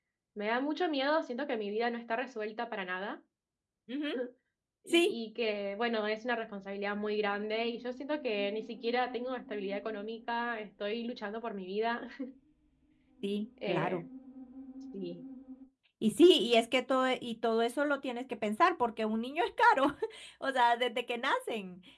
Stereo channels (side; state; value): both; identical; correlation 1.00